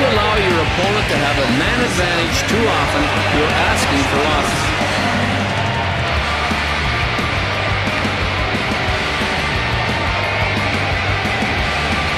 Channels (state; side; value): identical; both; correlation 1.00